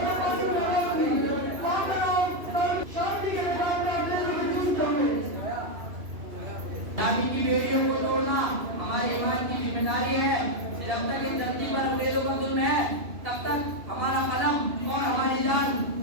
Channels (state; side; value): late; left; 2.7 ms